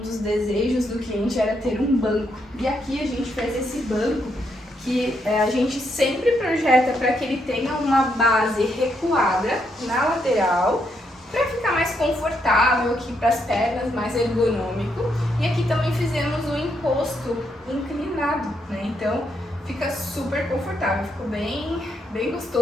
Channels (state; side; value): normal; both; correlation 0.77